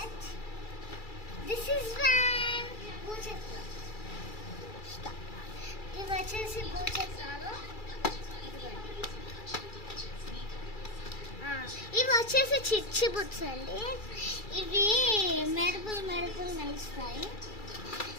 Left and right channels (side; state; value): right; late; 2.3 ms